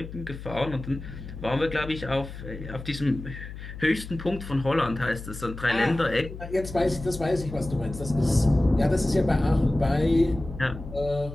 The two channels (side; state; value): left; noise; hum, 11 dB below the sound